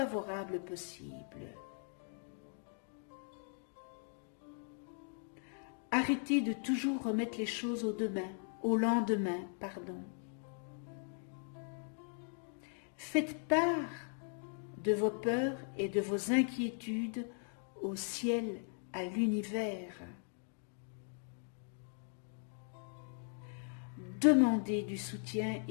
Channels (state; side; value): silent; right; 52 dB below the other